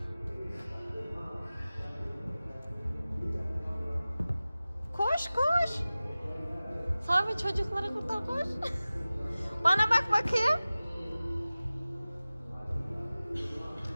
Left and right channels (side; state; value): both; inverted; correlation -0.97